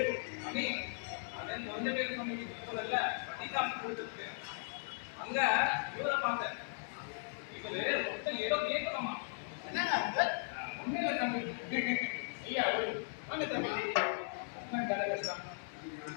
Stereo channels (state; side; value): silent; right; digital silence